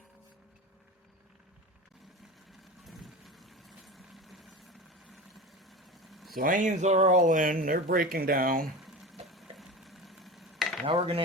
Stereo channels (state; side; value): normal; both; correlation 0.29